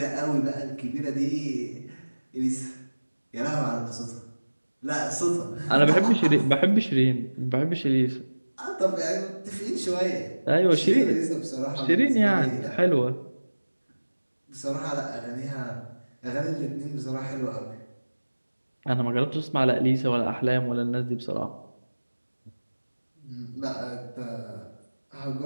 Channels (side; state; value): both; inverted; correlation -1.00